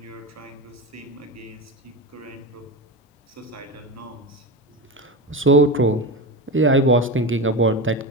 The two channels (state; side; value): normal; both; correlation 0.21